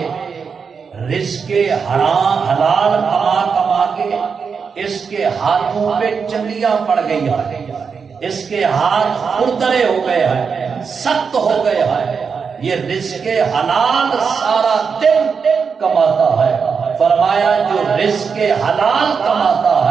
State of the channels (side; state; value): left; quieter; 5.8 dB